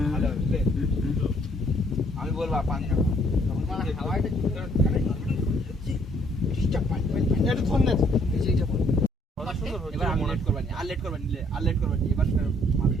আমি বলবো পানি না তখন মানে হাওয়াটা ডিস্টার্ব পানি এটা ধর না। কথা সুন্দর হচ্ছে এবার আমি লেট করবানি আর লেট করবানি এবার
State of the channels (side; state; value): both; normal; correlation 0.65